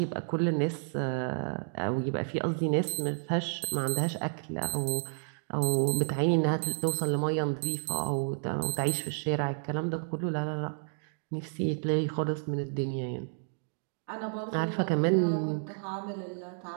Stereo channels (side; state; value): left; silent; digital silence